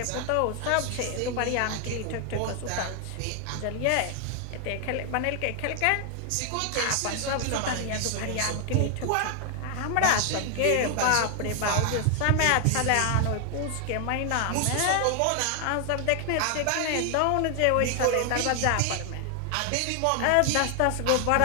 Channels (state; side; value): different; both; correlation 0.00